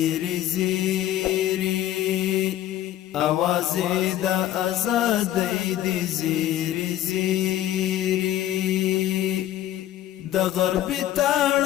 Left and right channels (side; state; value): right; quieter; 12.8 dB